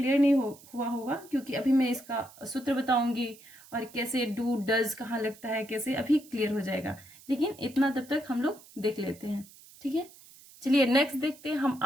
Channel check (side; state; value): right; noise; hiss, 22 dB below the sound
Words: नहीं हुआ होगा, क्योंकि अभी मैं इसका सूत्र बताऊंगी और कैसे डू डज कहाँ लगता है, कैसे, अभी क्लियर हो जाएगा, लेकिन इतना तब तक हम लोग देख लेते हैं। ठीक है, चलिए नेक्स्ट देखते हैं। हम